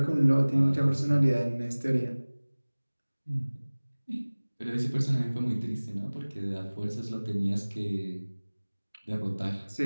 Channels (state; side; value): inverted; both; correlation -1.00